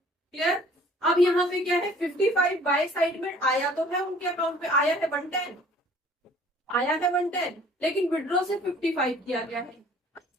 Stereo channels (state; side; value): normal; both; correlation 0.53